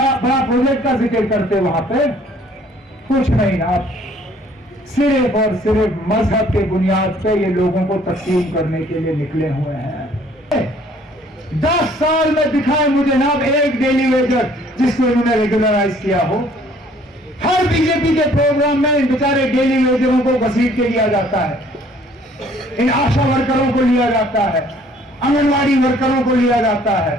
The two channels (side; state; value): both; normal; correlation 0.58